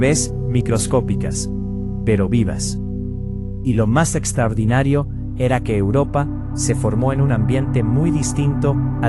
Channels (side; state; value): both; identical; correlation 1.00